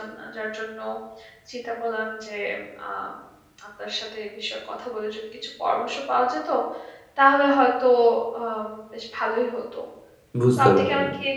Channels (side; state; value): both; identical; correlation 1.00